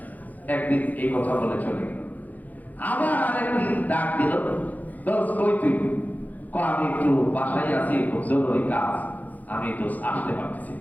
একদিন এই কথা বলে চলে গেল আবার আরেকদিন ডাক দিল দোস্ত কই তুই আমি একটু বাসায় আছি খুব জরুরি কাজ আমি দোস্ত আসতে পারতেছি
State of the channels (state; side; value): late; right; 0.080 ms